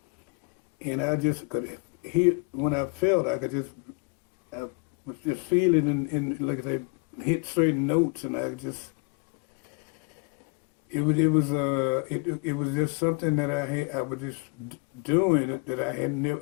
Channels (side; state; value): right; quieter; 31.5 dB